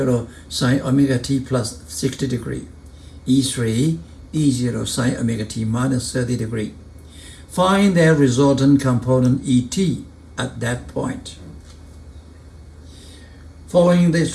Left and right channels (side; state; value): both; identical; correlation 1.00